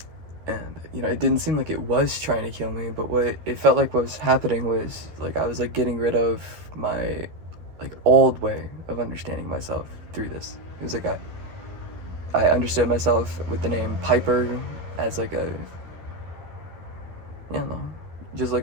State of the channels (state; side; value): late; left; 12 ms